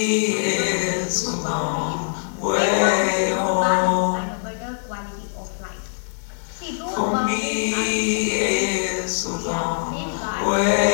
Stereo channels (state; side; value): silent; right; 64 dB below the other